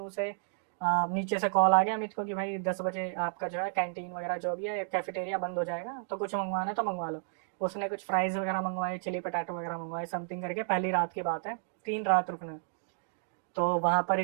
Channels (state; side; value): silent; left; digital silence